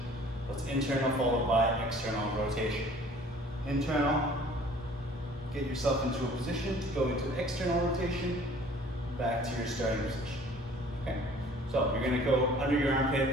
So it's internal followed by external rotation. Internal, get yourself into a position to go into external rotation, back to your starting position. Okay? So you're going to go under your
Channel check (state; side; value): normal; both; correlation 0.51